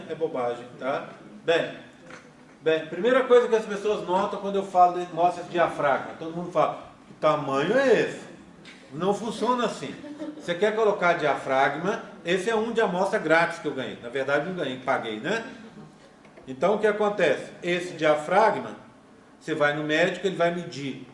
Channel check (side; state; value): both; identical; correlation 1.00